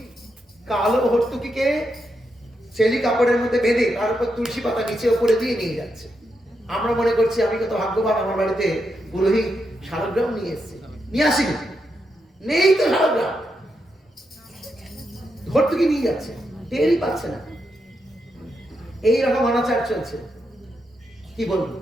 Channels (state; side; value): normal; both; correlation 0.84